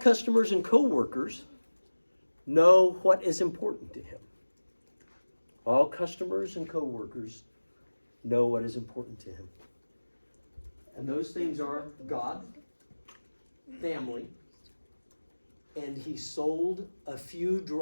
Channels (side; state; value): both; inverted; correlation -1.00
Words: and co-workers know what is important to him. All customers and co-workers know what is important to him. And those things are God, family, and he sold a few